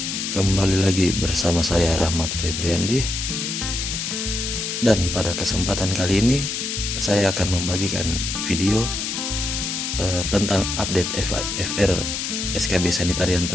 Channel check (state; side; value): noise; left; hiss, 3 dB below the sound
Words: Kembali lagi bersama saya Rahmat Febriandi. Dan pada kesempatan kali ini saya akan membagikan video tentang update FR SKB Sanitarian